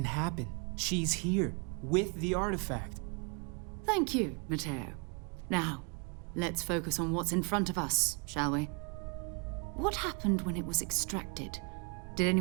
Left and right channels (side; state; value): left; quieter; 34.8 dB